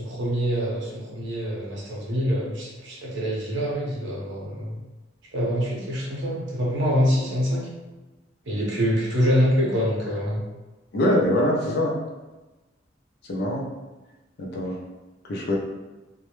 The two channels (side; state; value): both; normal; correlation 0.59